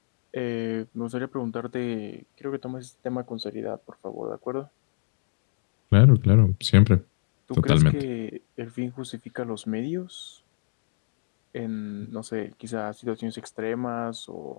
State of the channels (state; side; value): silent; right; digital silence